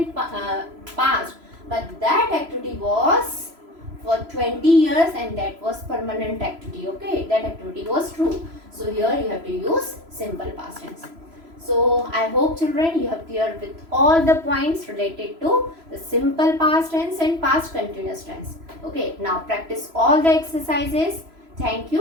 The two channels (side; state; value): left; late; 3.0 ms